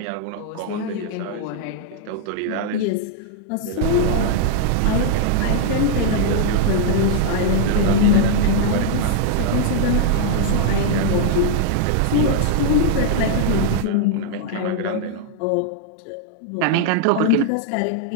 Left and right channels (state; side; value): different; both; correlation 0.00